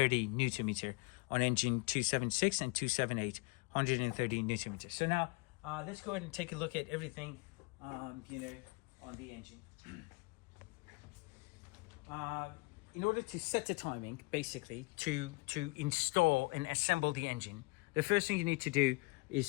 Newton meter on engine 276 and 278, 130 Newton meter. So now let's go ahead and take a look at everything, on the engine. In order to set the timing, basically, to install and assemble the engine, the first thing you need to do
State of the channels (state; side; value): quieter; right; 26.5 dB